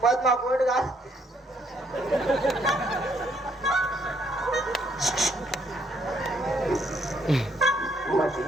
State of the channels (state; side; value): normal; both; correlation 0.70